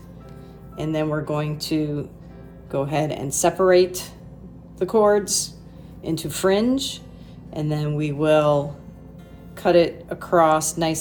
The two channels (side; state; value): both; identical; correlation 1.00